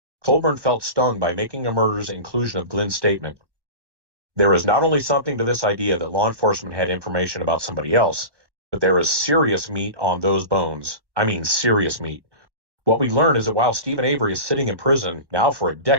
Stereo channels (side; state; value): left; late; 1.1 ms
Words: Colborn felt stung by Making a Murder's inclusion of Glenn's statement. There is not only something to this idea that law enforcement had information about somebody else, but there is serious meat on those bones. I mean serious meat. What we learn is that while Stephen Avery is sitting in prison, now for a